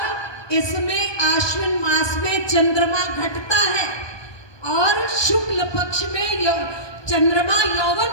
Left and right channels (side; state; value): right; late; 1.2 ms